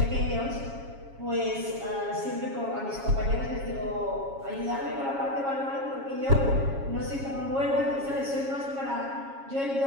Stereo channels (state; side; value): late; left; 7.3 ms